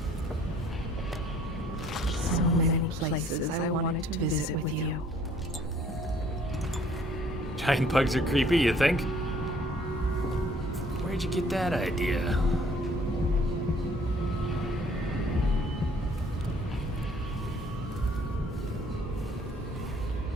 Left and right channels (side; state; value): both; normal; correlation 0.59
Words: So many places I wanted to visit with you. Giant bugs are creepy, you think? Where'd you get that idea?